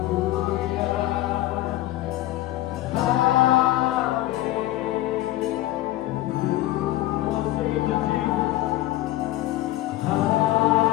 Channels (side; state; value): right; quieter; 16.0 dB